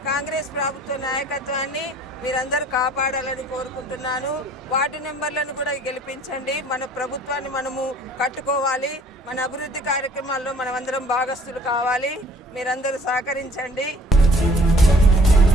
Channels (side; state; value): both; normal; correlation 0.54